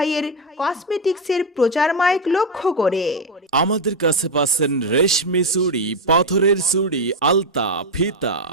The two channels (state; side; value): normal; both; correlation 0.08